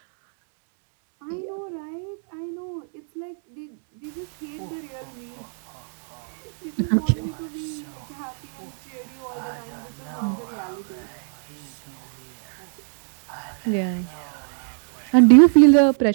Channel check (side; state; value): left; silent; 58 dB below the other